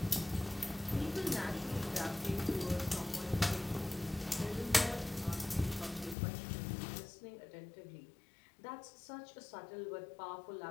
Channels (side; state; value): right; drops out; at 6.2 s